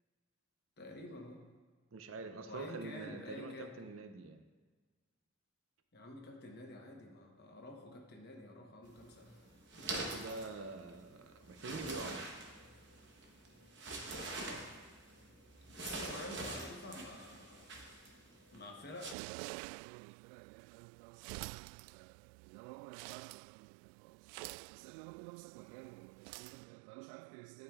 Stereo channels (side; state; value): left; drops out; at 19.2 s